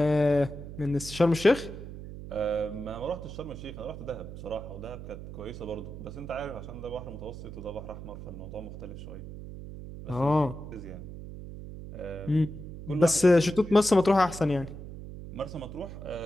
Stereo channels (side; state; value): right; noise; hum, 11 dB below the sound